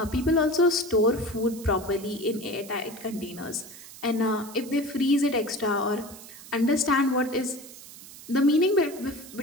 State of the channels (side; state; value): right; noise; hiss, 17 dB below the sound